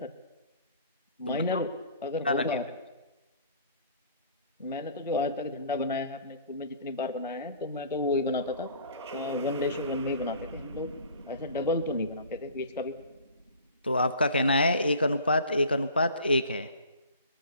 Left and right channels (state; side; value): inverted; both; correlation -0.47